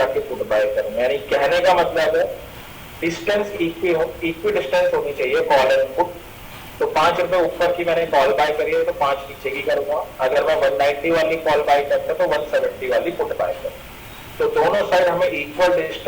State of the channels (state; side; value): identical; both; correlation 1.00